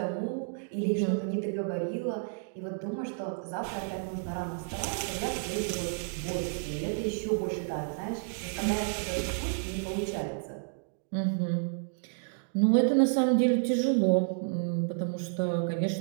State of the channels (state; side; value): silent; left; digital silence